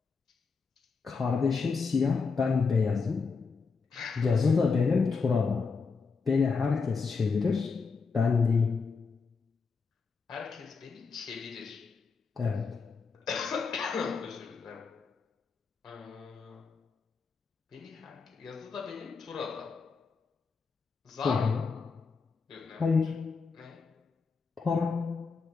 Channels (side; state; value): right; quieter; 4.9 dB